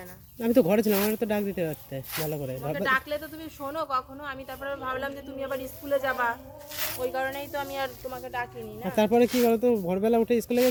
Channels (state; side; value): identical; both; correlation 1.00